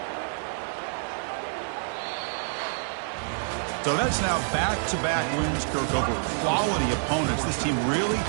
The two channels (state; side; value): silent; left; digital silence